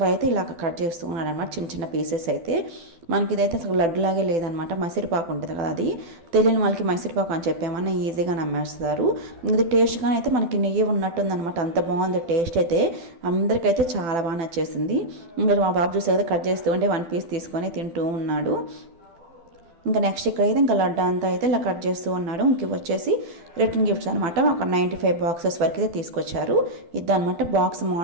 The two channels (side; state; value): left; late; 12 ms